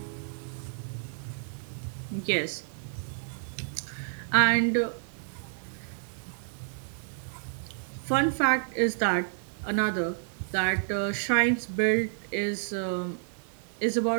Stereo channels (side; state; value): left; silent; digital silence